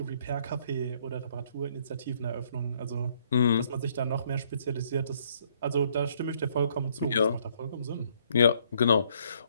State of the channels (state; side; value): inverted; both; correlation -0.67